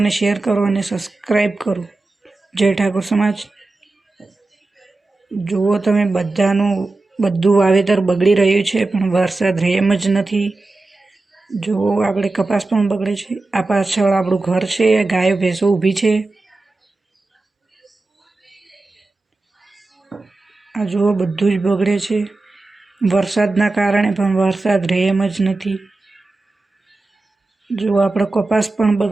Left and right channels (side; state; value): left; quieter; 3.3 dB